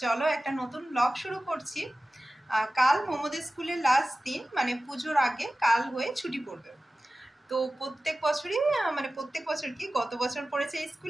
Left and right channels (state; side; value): normal; both; correlation 0.96